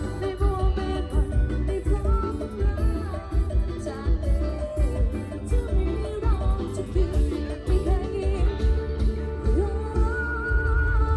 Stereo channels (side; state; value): both; identical; correlation 1.00